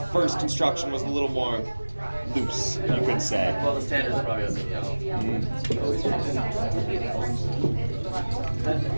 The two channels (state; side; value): inverted; both; correlation -1.00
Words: first construction was a little more loose, you could say. Well, the standards probably doesn't know.